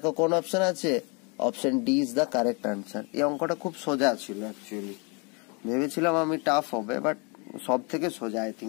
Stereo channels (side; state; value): right; quieter; 32.3 dB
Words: কোন অপশন আছে, option D is the correct answer. এই অঙ্কটা খুব সোজা ছিল অ্যাকচুয়ালি, ভেবেছিলাম আমি টাফ হবে, বাট সব থেকে সোজা আই